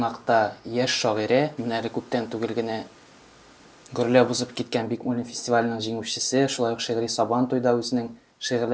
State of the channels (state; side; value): identical; both; correlation 1.00